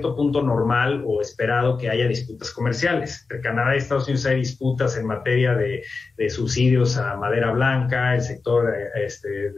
punto normal o esperado que haya disputas comerciales. Entre Canadá y Estados Unidos hay disputas en materia de subsidios a madera blanca, el sector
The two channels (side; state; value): right; quieter; 4.3 dB